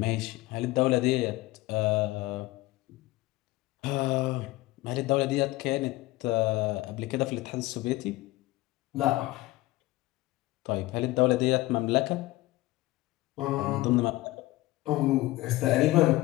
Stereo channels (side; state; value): right; quieter; 18.8 dB